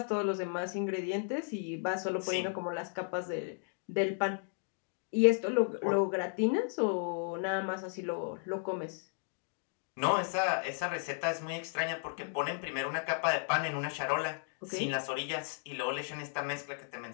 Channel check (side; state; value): right; silent; 55 dB below the other